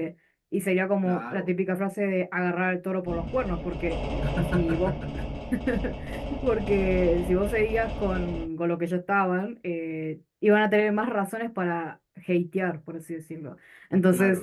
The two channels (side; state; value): both; identical; correlation 1.00